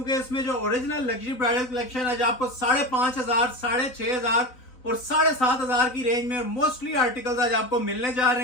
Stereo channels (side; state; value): right; late; 4.0 ms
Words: इसमें जो ओरिजिनल लग्जरी ब्राइडल कलेक्शन आज आपको 5,500, 6,500 और 7,500 की रेंज में मोस्टली आर्टिकल्स आज आपको मिलने जा